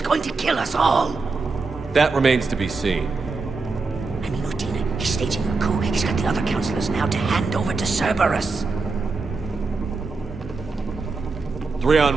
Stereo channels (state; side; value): quieter; left; 4.1 dB